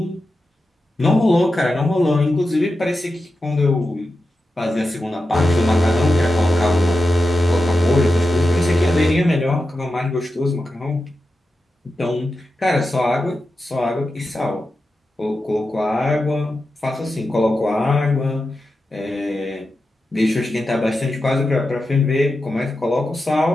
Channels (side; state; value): both; normal; correlation 0.91